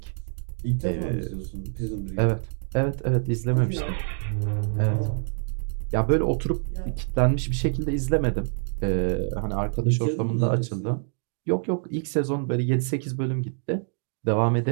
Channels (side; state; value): left; silent; digital silence